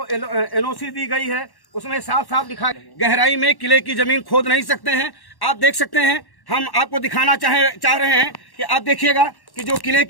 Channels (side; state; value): right; late; 1.1 ms